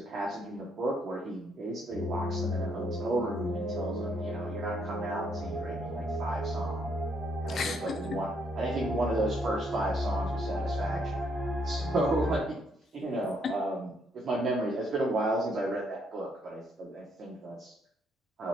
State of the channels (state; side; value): normal; both; correlation 0.71